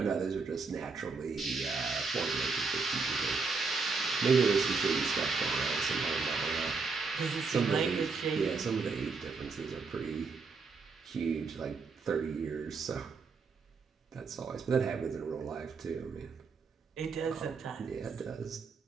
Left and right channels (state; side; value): quieter; left; 4.6 dB